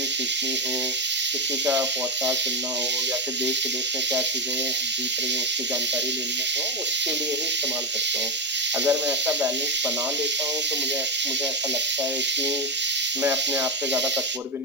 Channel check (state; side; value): normal; both; correlation 0.07